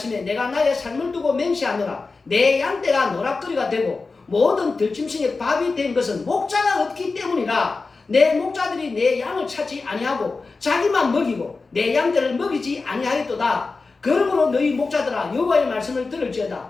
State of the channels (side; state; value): right; quieter; 4.0 dB